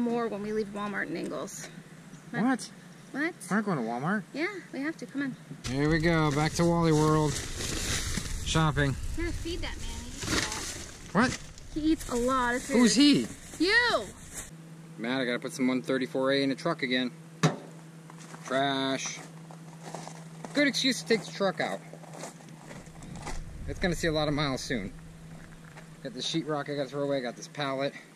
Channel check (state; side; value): identical; both; correlation 1.00